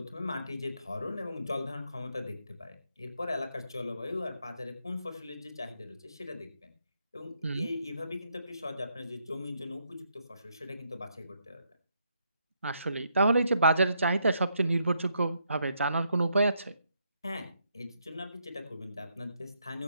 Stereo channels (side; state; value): both; inverted; correlation -0.76